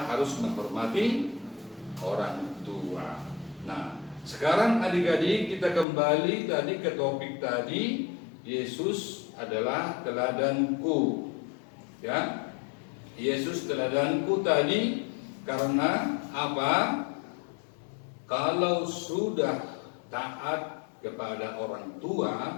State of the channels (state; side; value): drops out; right; at 5.9 s